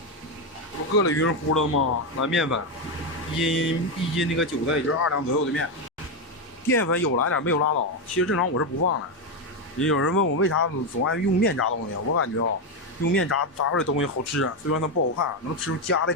不搁了匀乎了吗？来面粉，一斤那个韭菜也就是2两左右的面。淀粉有来点，没有拉倒。其实正常我是不放的。也有人问我为啥总爱用面炸东西，我感觉啊，用面炸出来的东西好吃，虽然它不好看，能吃出家的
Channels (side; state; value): both; normal; correlation 0.08